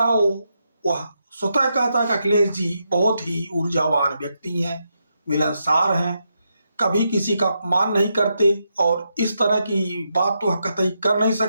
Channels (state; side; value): inverted; both; correlation -0.83